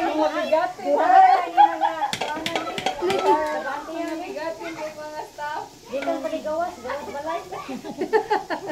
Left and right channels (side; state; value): both; identical; correlation 1.00